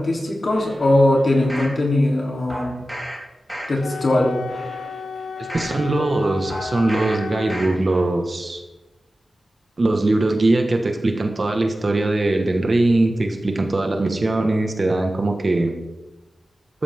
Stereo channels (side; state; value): both; normal; correlation 0.94